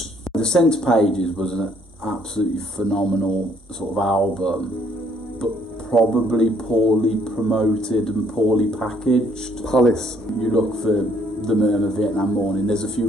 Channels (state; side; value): normal; both; correlation 0.65